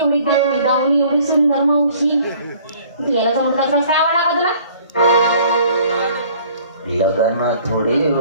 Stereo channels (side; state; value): both; inverted; correlation -0.55